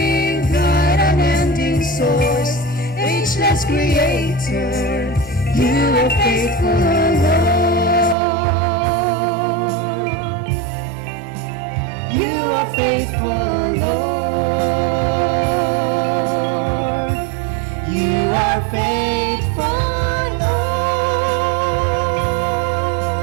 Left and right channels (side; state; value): left; drops out; at 8.2 s